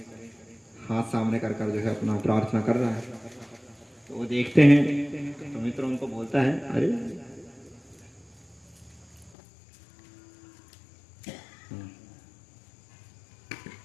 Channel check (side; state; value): right; drops out; at 9.3 s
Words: हाथ सामने कर कर जो है अपना प्रार्थना कर रहा है। तो वो देखते हैं तो मित्र उनको बोलता है अरे